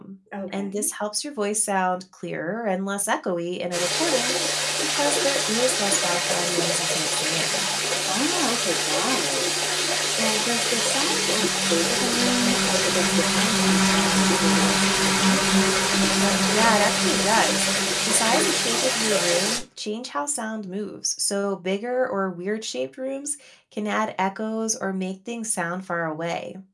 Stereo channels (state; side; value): identical; both; correlation 1.00